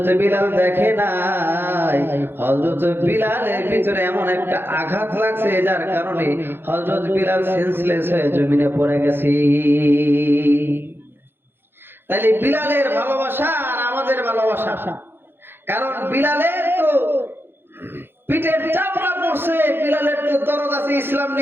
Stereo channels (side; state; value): left; late; 0.10 ms